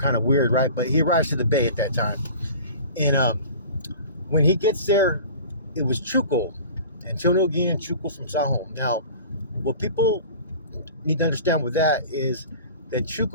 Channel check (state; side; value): inverted; both; correlation -0.40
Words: of weird, right? But he arrives to the Bay at that time. And when he gets there, it was Chuco, Antonio Guillen Chuco from Sahom. Now, what people need to understand with that is that